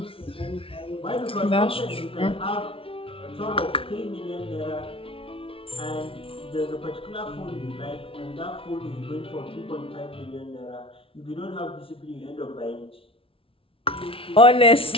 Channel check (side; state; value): right; late; 0.26 ms